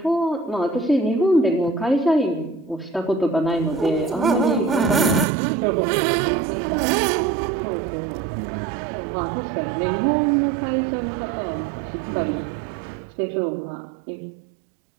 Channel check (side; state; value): left; drops out; at 5.2 s